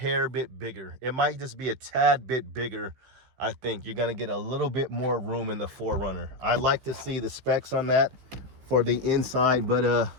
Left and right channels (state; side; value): late; left; 16 ms